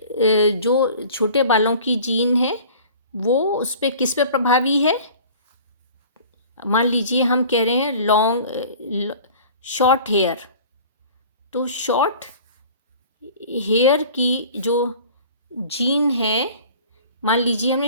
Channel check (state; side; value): inverted; both; correlation -0.45